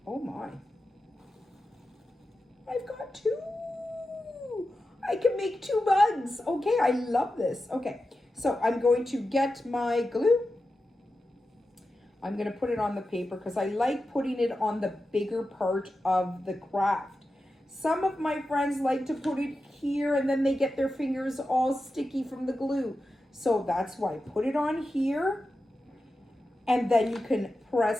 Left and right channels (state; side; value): normal; both; correlation 0.92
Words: Oh my, I've got two. I can make two bugs. Okay, I love this. Okay, so I'm going to get my glue. I'm going to put it on the paper because I like putting it on the bigger part of the craft. Some of my friends like to put it here and then they get their fingers all sticky from the glue. So that's why I put it on here, and then you can